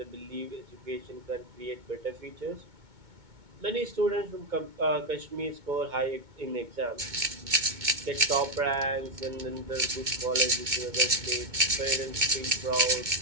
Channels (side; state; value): left; late; 2.2 ms